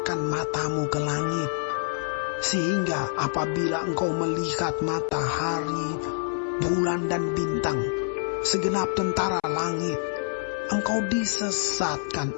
matamu ke langit, sehingga apabila engkau melihat matahari, bulan dan bintang, segenap tentara langit, engkau disesatkan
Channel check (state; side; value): silent; right; 60 dB below the other